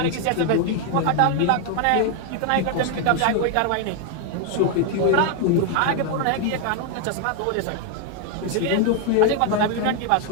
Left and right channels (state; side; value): different; both; correlation 0.00